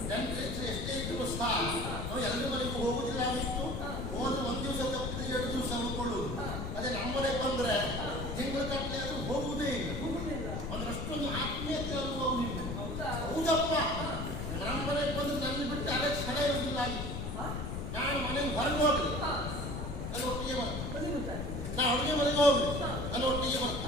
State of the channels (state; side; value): noise; left; rumble, 4 dB below the sound